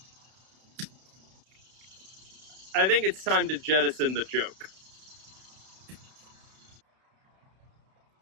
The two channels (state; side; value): late; left; 32 ms